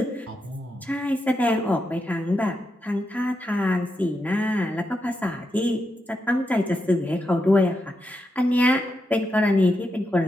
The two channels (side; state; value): both; normal; correlation 0.85